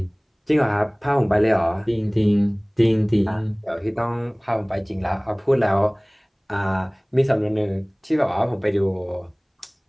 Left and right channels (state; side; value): identical; both; correlation 1.00